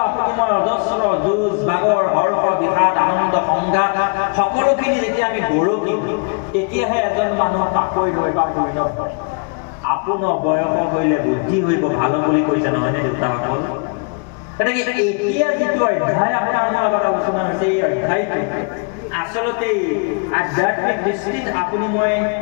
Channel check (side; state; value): right; quieter; 34.9 dB